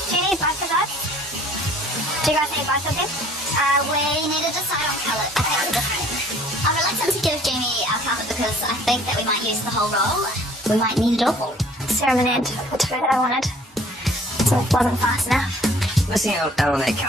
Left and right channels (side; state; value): both; normal; correlation 0.55